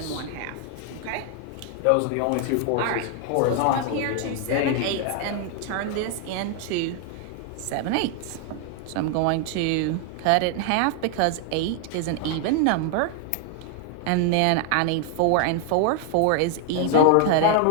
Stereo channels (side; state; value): both; different; correlation 0.00